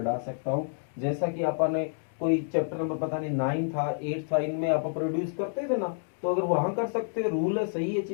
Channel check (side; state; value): right; silent; digital silence